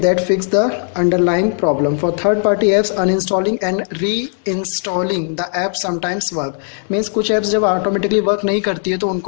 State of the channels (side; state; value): right; silent; 68 dB below the other